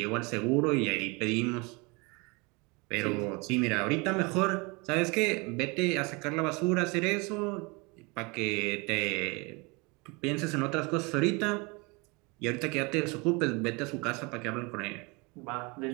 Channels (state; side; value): quieter; left; 28.1 dB